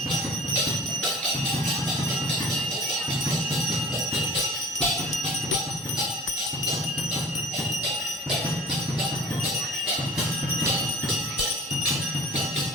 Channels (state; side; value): normal; both; correlation 0.43